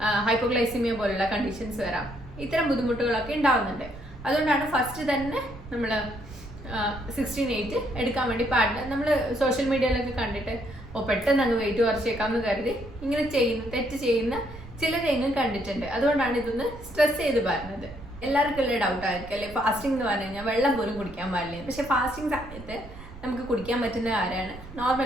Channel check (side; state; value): right; noise; rumble, 15 dB below the sound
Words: ഹൈപ്പോഗ്ലൈസിമിയ പോലുള്ള കണ്ടീഷൻസ് വരാം, ഇത്തരം ബുദ്ധിമുട്ടുകളൊക്കെ ഉണ്ടാവുന്നുണ്ട്. അതുകൊണ്ടാണ് ഫസ്റ്റ് തന്നെ നമ്മൾ 16-8 എടുക്കാൻ വേണ്ടി പാടില്ല. നമ്മൾ സോഷ്യൽ മീഡിയയിലൊക്കെ കണ്ടിട്ട് പെട്ടെന്ന് അങ്ങ് വെയിറ്റ് കുറച്ചേക്കാമെന്ന് കരുതി ഇങ്ങനെ തെറ്റ് ചെയ്യുന്ന ചിലരെങ്കിലും കണ്ടിട്ടുണ്ട്. അതുകൊണ്ടാണ് ഇതൊന്ന് സ്ട്രെസ് ചെയ്ത് പറയുന്നത്. എല്ലാവർക്കും ഉള്ള ഡൗട്ട് ആയിരിക്കും അല്ലെ, ഫാസ്റ്റിംഗ് എന്ന് പറഞ്ഞു കഴിഞ്ഞാൽ വെള്ളം പോലും കുടിക്കാൻ പാടില്ല. പക്ഷെ ഫാസ്റ്റിംഗ് സമയത്ത് നമുക്ക് കുടിക്കാൻ പറ്റുന്ന കാര്യമാണ്